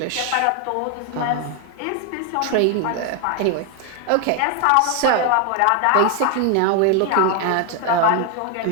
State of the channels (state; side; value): different; both; correlation 0.01